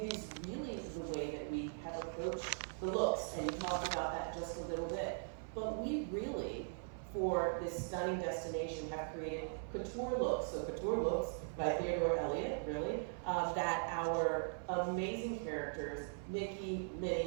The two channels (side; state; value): left; silent; 51 dB below the other